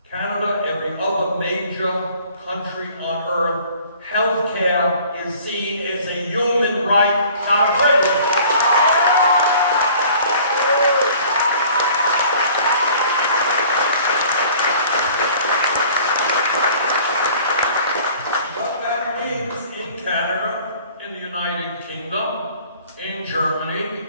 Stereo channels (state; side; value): inverted; both; correlation -0.51